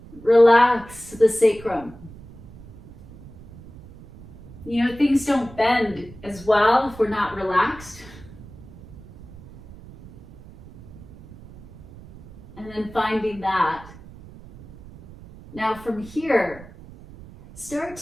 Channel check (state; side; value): noise; right; rumble, 19 dB below the sound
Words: Relax the sacrum. You know, things don't bend as well if we're not relaxed. And then finding that. Now from here, start